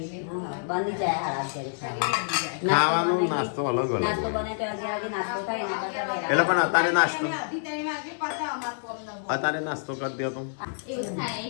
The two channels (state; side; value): silent; right; digital silence